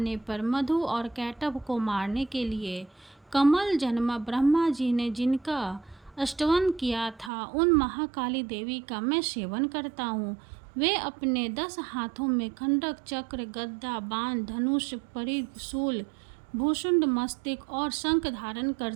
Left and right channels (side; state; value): left; drops out; at 7.3 s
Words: पर मधु और कैटभ को मारने के लिए कमल जन्मा ब्रह्मा जी ने जिनका स्तवन किया था, उन महाकाली देवी का मैं सेवन करता हूँ। वे अपने 10 हाथों में खंडक, चक्र, गदा, बाण, धनुष, परिघ, शूल, भूषुंड, मस्तक और शंख धारण